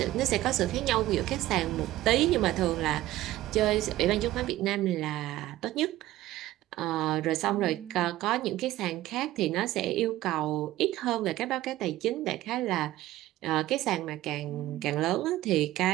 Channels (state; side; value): quieter; left; 15.6 dB